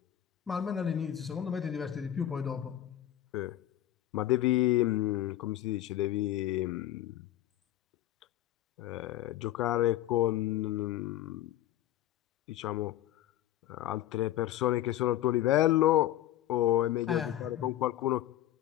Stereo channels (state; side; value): quieter; right; 13.2 dB